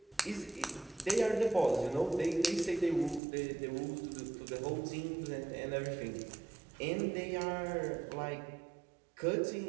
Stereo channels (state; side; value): drops out; left; at 3.2 s